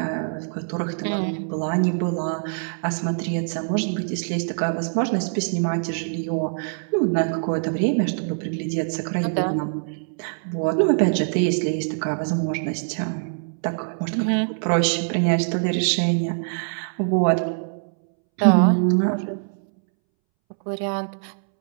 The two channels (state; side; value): silent; left; 63 dB below the other